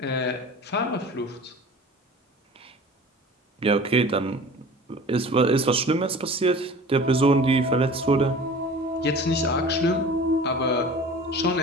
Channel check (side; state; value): both; normal; correlation 0.41